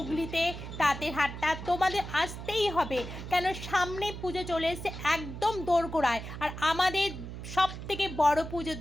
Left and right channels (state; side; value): noise; right; hum, 9 dB below the sound